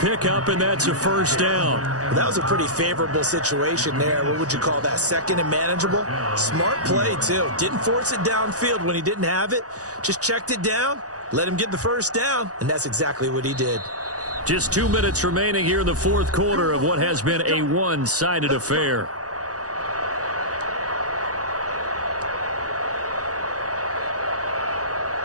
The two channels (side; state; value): left; late; 0.67 ms